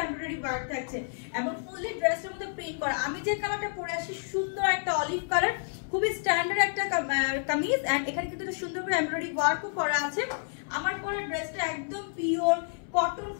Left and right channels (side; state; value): right; silent; 58 dB below the other